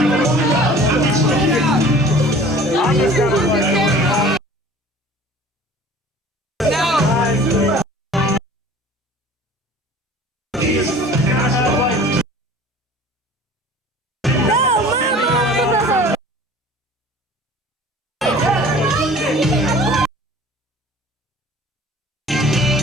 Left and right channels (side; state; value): both; normal; correlation 0.46